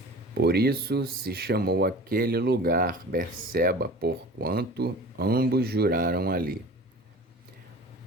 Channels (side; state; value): both; normal; correlation 0.40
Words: Por isso se chamou aquele lugar Berseba, porquanto ambos juraram ali.